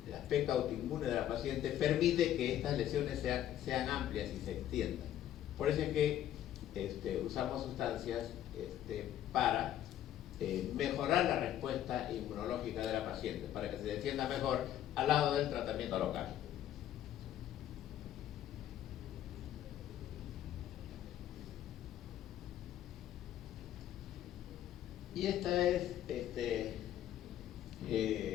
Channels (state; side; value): quieter; right; 11.7 dB